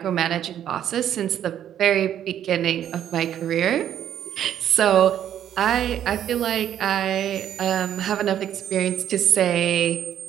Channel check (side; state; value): left; quieter; 10.4 dB